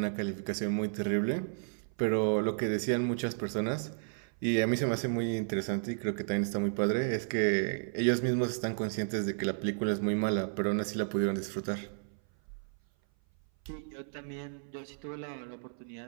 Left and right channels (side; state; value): left; silent; 56 dB below the other